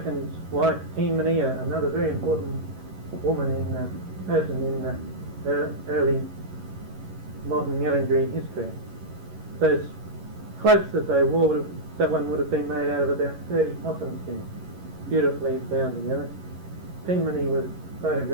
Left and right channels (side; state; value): left; late; 11 ms